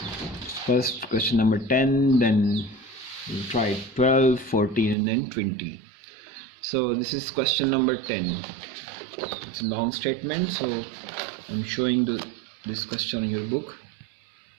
First question number 10, then we'll try 12, 14 and then 20. So this is question number 10. It's a long statement, so I'm showing this question in your book.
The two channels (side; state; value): left; drops out; at 5.0 s